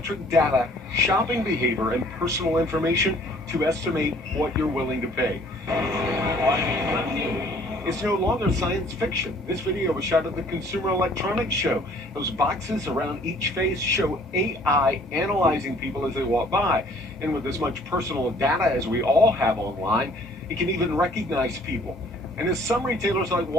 data, shopping behavior, and personal information to estimate what you're willing to pay. It's no longer science fiction. This video was shot at the Consumer Electronics Show. Those boxes around each face show AI analyzing people as they walk by. And with as much personal data as we all have online, it can even recognize people. And as some retailers like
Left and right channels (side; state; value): both; normal; correlation 0.56